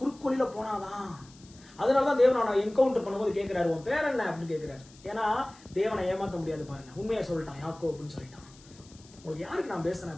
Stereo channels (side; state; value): left; noise; hiss, 24 dB below the sound